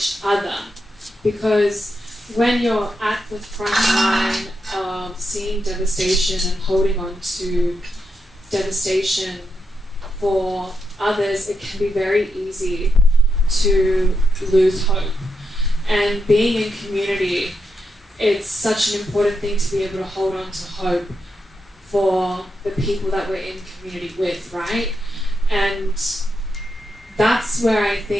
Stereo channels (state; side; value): normal; both; correlation 0.84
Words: other. Because when you're at the front line of seeing devastation and holding on to devastation for others, it can be very easy to lose hope. And being in community, it's such an important thing to be able to hold on to hope for the people that we're in community with, right? And that's where I